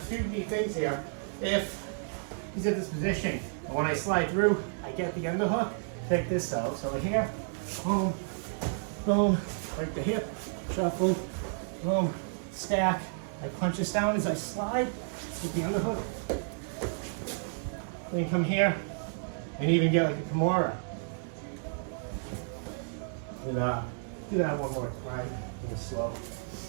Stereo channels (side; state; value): left; silent; digital silence